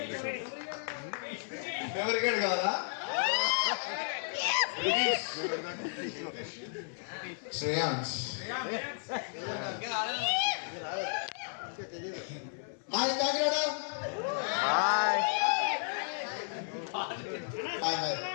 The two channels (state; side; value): silent; right; 56 dB below the other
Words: మెమరీ కార్డ్ కావాలా? Shreyansh hi Kakinada hi hi hi